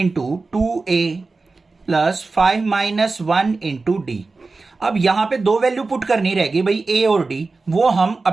2a plus 5-1 into d. अब यहां पे दो वैल्यू पुट करनी रहेगी भाई, a और d, वो हम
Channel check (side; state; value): left; quieter; 3.8 dB